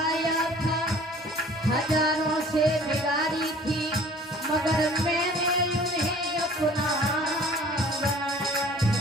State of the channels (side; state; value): both; normal; correlation 0.49